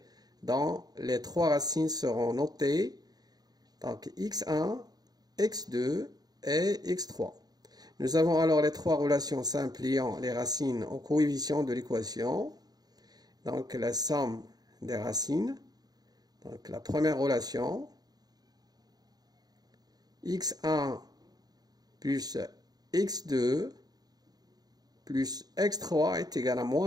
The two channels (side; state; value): left; late; 0.19 ms